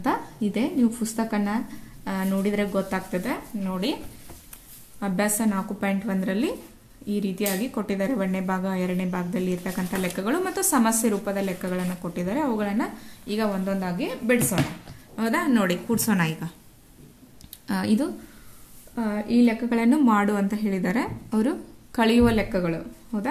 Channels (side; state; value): both; identical; correlation 1.00